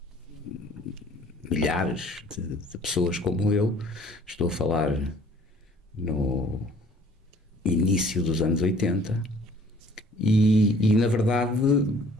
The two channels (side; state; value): both; normal; correlation 0.55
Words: milhares de pessoas como eu, estou a falar no início dos anos 80, e na verdade